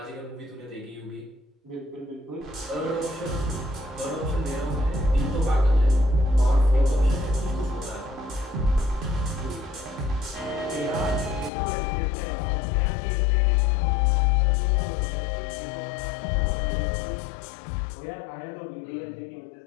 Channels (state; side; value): drops out; right; at 11.5 s